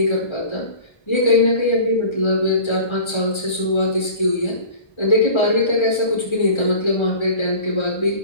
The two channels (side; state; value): right; late; 1.3 ms